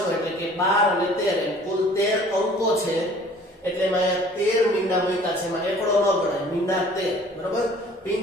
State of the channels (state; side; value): normal; both; correlation 0.52